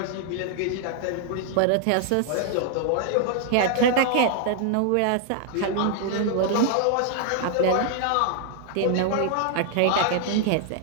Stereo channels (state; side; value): different; both; correlation 0.00